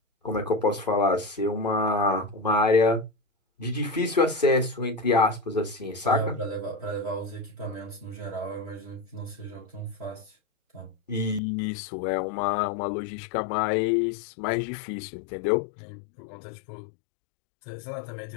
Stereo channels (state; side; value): drops out; right; at 11.4 s